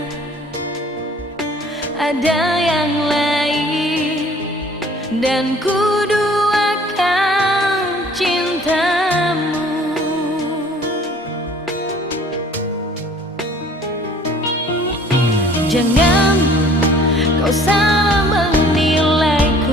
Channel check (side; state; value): both; normal; correlation 0.53